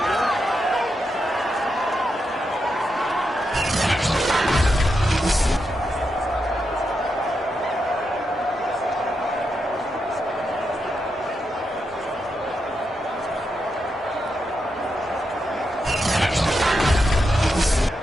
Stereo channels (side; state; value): both; normal; correlation 0.85